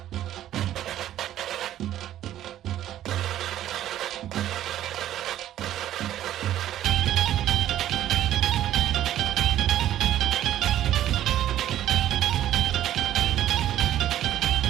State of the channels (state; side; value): quieter; left; 12.3 dB